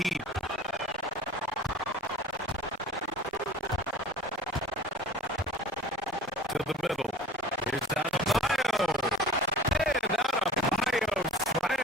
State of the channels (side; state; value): both; normal; correlation 0.43